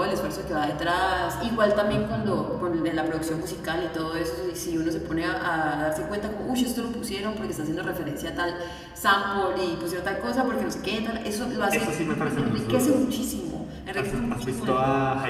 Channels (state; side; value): identical; both; correlation 1.00